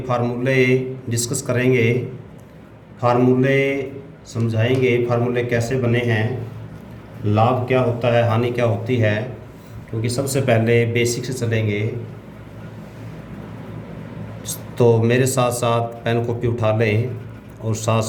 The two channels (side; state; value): both; identical; correlation 1.00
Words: फार्मूले डिस्कस करेंगे, फार्मूले समझाएंगे, फार्मूले कैसे बने हैं, लाभ क्या होता है, हानि क्या होती है। क्योंकि सबसे पहले बेसिक से चलेंगे, तो मेरे साथ साथ पेन कॉपी उठा लें और साथ